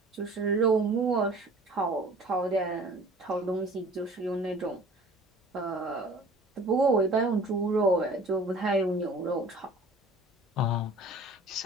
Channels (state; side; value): normal; both; correlation 0.47